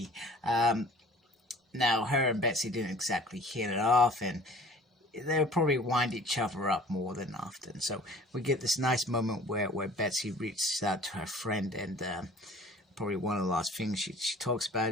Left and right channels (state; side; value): normal; both; correlation 0.48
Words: Now her and Betsy didn't exactly hit it off, and they would probably wind each other up more than often. So we get this nice moment where Betsy reaches out to her friend, and probably one of the last things she talks